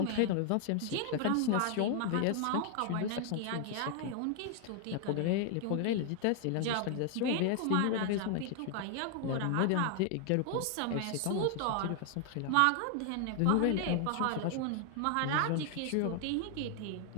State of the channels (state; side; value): different; both; correlation 0.00